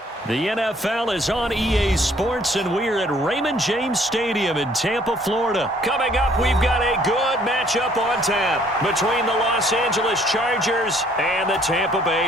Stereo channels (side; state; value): both; normal; correlation 0.61